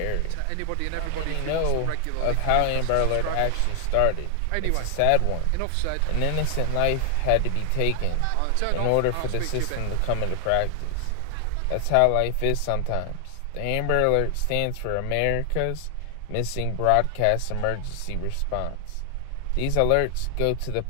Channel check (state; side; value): different; both; correlation 0.00